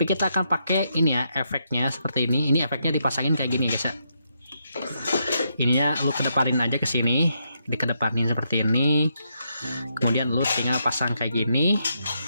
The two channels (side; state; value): both; inverted; correlation -0.79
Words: kita akan pakai ini ya, efeknya seperti ini. Ini efeknya dipasangin kayak gini guys ya. Ininya lu kedepanin aja ke sini, dikedepanin seperti ini. Kemudian lu tinggal pasang kayak gini.